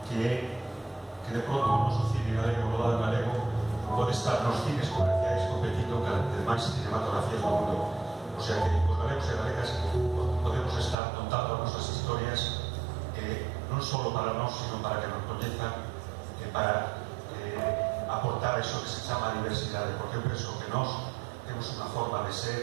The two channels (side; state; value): left; drops out; at 11.0 s